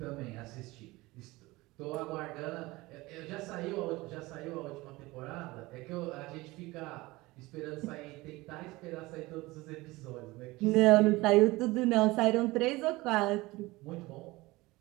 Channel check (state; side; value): quieter; left; 20.9 dB